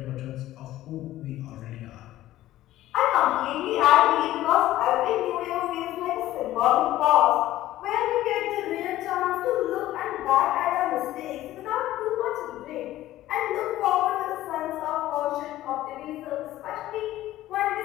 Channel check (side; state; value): right; quieter; 14.8 dB